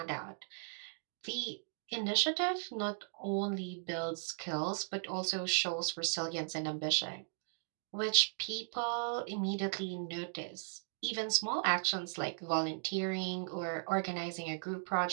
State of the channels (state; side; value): silent; left; digital silence